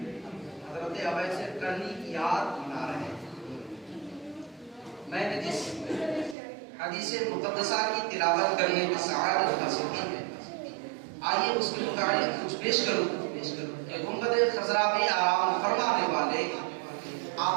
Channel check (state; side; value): drops out; left; at 6.4 s